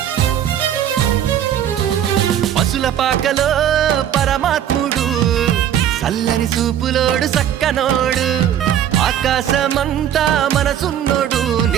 పశుల పాకలో పరమాత్ముడు చల్లని సూపులోడు సక్కనోడు ఆకాశమంతా మనసున్నోడు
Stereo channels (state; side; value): quieter; left; 10.2 dB